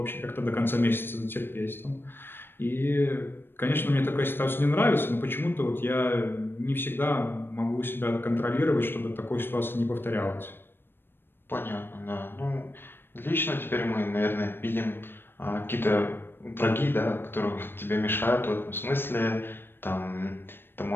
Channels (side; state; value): right; late; 0.10 ms